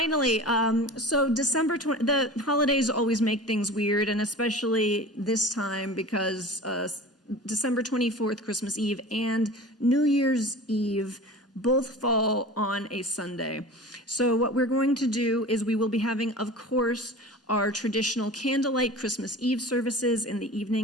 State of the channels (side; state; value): both; normal; correlation 0.36